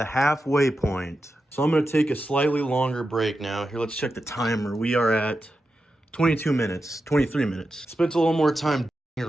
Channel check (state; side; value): normal; both; correlation 0.90